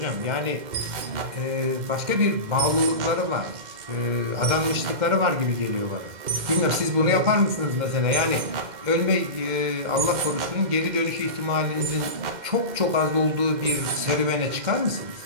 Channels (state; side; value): late; left; 2.1 ms